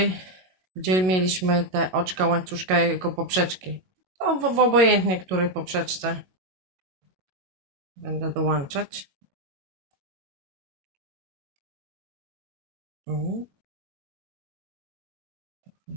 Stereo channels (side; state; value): left; late; 22 ms